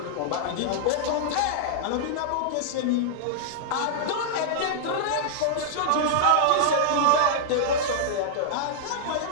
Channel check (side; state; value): both; different; correlation -0.01